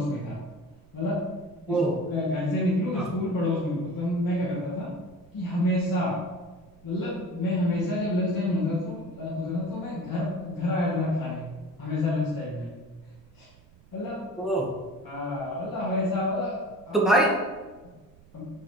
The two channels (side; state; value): right; noise; rumble, 26 dB below the sound